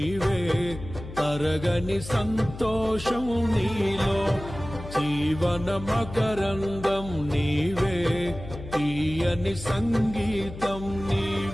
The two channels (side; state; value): left; noise; hum, 12 dB below the sound